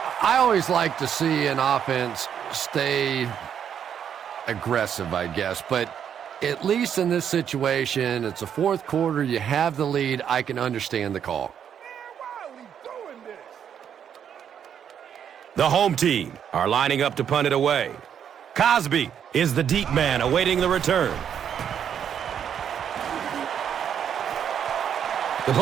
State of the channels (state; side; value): quieter; left; 8.6 dB